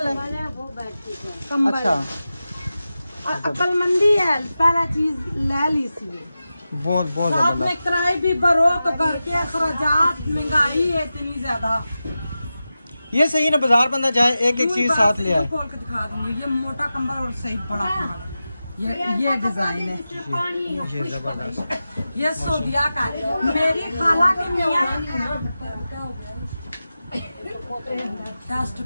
है। वो बैठती है। कंबल। अच्छा, अक्लमंदी है, पहला चीज ले ली सी। बहुत बहुत साथ जबरदस्त। में किराए भी भरो तो घर के अखराजात, महंगाई है इतनी ज्यादा। ये सही ना, बाजार बंदा जाए एक एक चीज साथ ले आए। खोल के दिखा दूंगी, ये मोटा कंबल और सही बड़ा कंबल, ये डिजाइन है, ये जबरदस्त। ये सोदिया का है। मेरी खाला की मियाँ डस्ट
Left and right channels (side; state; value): both; inverted; correlation -0.93